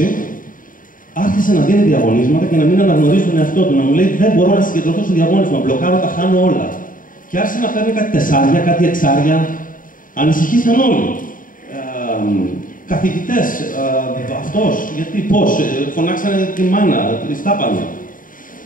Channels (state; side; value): late; right; 0.39 ms